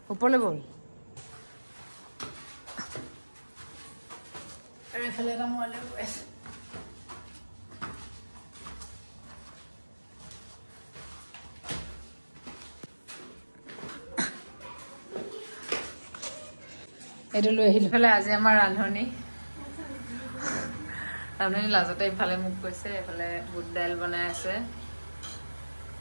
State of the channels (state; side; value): inverted; both; correlation -1.00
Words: ওপৰলৈ ব'ল আৰু এইফালে এটা মই লৈ গৈ আছোঁ এইটো লৈ আহিলোঁ ইফালে আজি আমাৰ ৰান্ধনি লাজতে ইফালে মোক কৈছে এইফালে বুট দাইল বনাই আছে